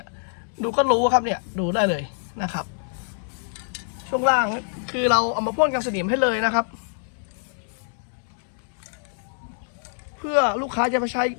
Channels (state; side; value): silent; right; digital silence